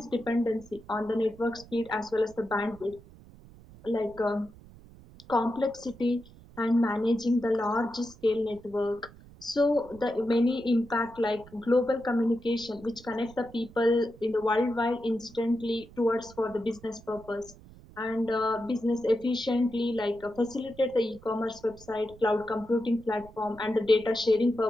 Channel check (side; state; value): right; noise; rumble, 21 dB below the sound